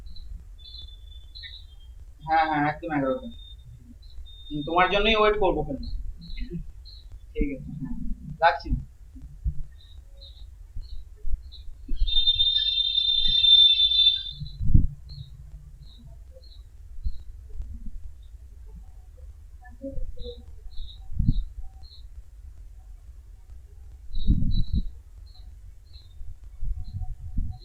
হ্যাঁ হ্যাঁ, একদম 11টা। তোমার জন্যই ওয়েট করবো ওখানে। ঠিক আছে, হ্যাঁ, রাখছি।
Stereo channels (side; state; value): both; identical; correlation 1.00